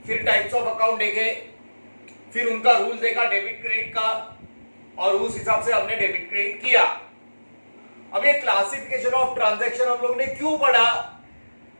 फिर टाइप्स ऑफ अकाउंट देखे, फिर उनका रूल देखा डेबिट क्रेडिट का, और उस हिसाब से हमने डेबिट क्रेडिट किया। अब ये क्लासिफिकेशन ऑफ ट्रांजैक्शन हम लोग ने क्यों पढ़ा?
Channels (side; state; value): both; inverted; correlation -1.00